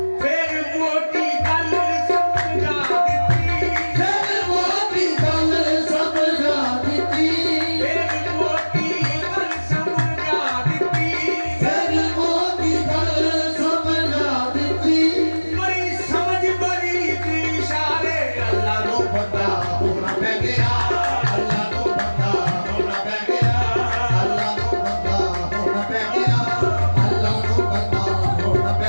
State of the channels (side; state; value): both; inverted; correlation -1.00